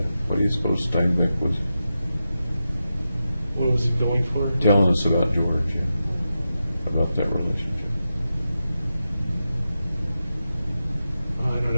What do you suppose Steinbeck was What was he going for? telling us about George, yeah? About that relationship? I don't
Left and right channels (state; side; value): inverted; both; correlation -0.90